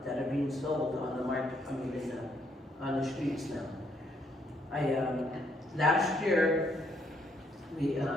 that are being sold on the market, on the streets now. Last year, I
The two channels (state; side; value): normal; both; correlation 0.71